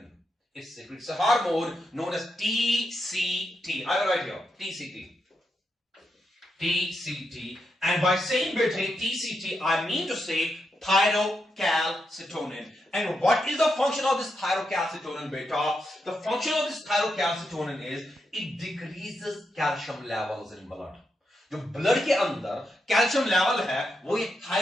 It secretes a hormone known as TCT. I will write here TCT. TCT. And by saying TCT, I mean to say thyrocalcitonin. And what is the function of this thyrocalcitonin, beta? The function of this thyrocalcitonin is it decreases calcium levels in blood. जो blood के अंदर calcium level है वो ये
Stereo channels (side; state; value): both; normal; correlation 0.84